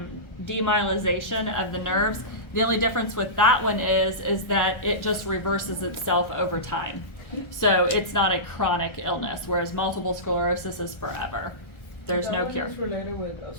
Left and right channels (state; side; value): late; right; 1.4 ms